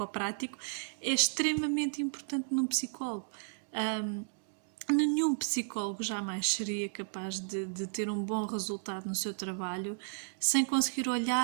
é extremamente importante num psicólogo. Nenhum psicólogo jamais seria capaz de ter um bom resultado no seu trabalho sem conseguir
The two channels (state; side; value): silent; left; digital silence